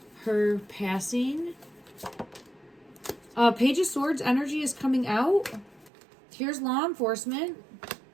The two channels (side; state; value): left; drops out; at 5.9 s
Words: her passing? Page of Swords energy is coming out. Here's law enforcement.